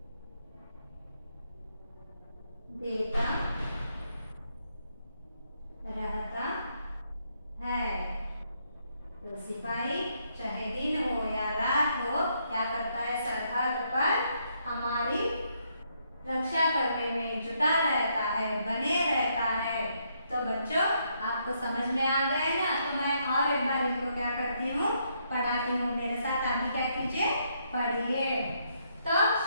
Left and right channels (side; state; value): both; inverted; correlation -0.75